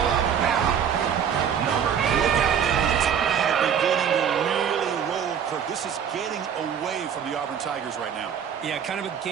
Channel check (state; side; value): quieter; left; 8.0 dB